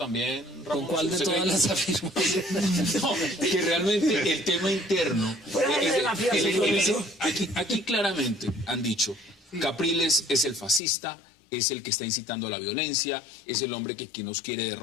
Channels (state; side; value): drops out; right; at 10.8 s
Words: Ramón. ¿Con cuál de todas las afirmaciones? No, que realmente el tema interno... Aquí claramente han dicho, Capriles es el fascista, es el que está incitando a la violencia, es el hombre que nos quiere